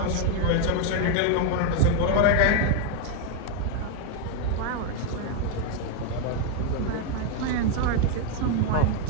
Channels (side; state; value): both; different; correlation 0.00